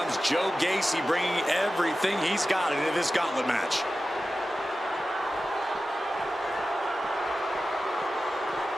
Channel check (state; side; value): normal; both; correlation 0.94